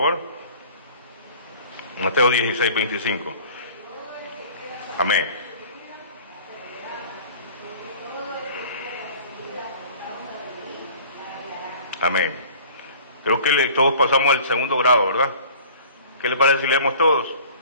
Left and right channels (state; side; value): inverted; both; correlation -0.46